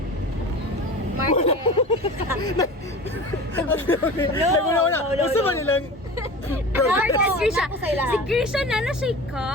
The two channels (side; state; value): both; normal; correlation 0.35